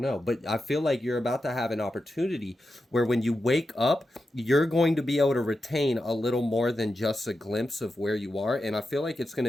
know. But I feel like you're about to have an opportunity where when you wake up, you're going to be able to retain a little more than just a glimpse of where you are. And I feel like it's going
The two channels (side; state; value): both; normal; correlation 0.90